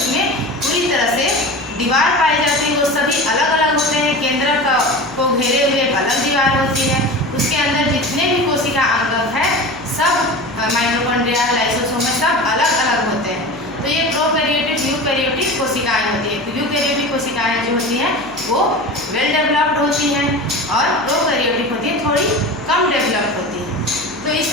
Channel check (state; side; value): noise; left; hum, 24 dB below the sound